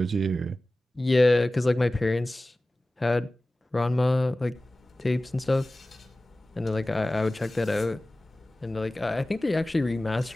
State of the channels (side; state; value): both; normal; correlation 0.97